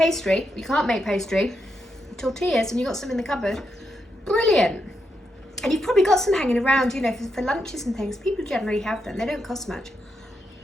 you can't make pastry, tortillas, and you've got some in the cupboard, brilliant. And you've probably got some hanging around, you know, for lunches and things. People generally have them. They don't cost much.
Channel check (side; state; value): both; normal; correlation 0.83